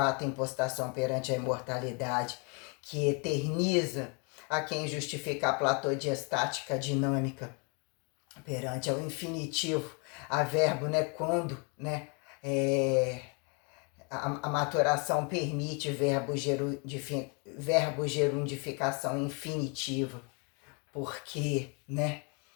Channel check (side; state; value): right; quieter; 34.4 dB